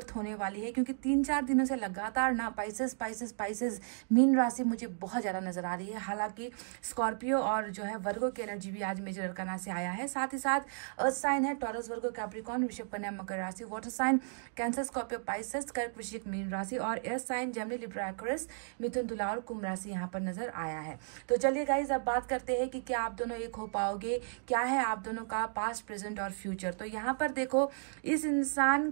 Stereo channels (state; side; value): silent; left; digital silence